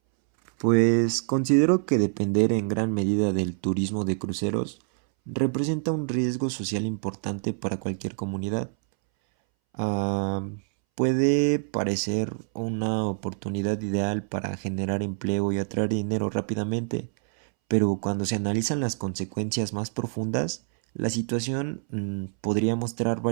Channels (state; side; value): silent; left; 61 dB below the other